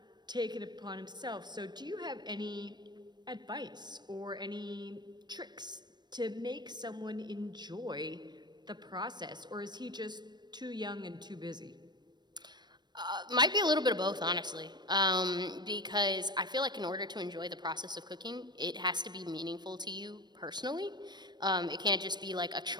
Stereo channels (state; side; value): late; left; 0.21 ms